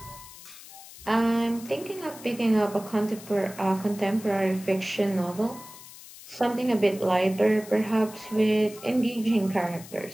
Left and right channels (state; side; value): noise; left; hiss, 17 dB below the sound